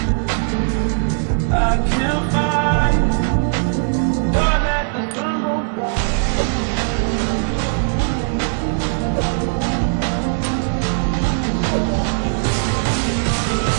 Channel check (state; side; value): silent; left; 67 dB below the other